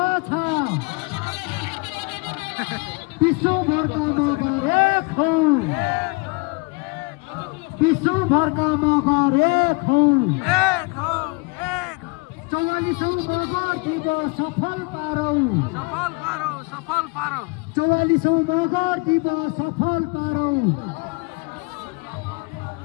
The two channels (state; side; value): quieter; right; 28.2 dB